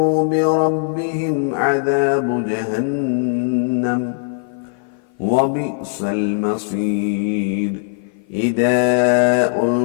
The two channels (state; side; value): silent; right; 56 dB below the other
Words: بربهم عذاب جهنم وبئس المصير إذا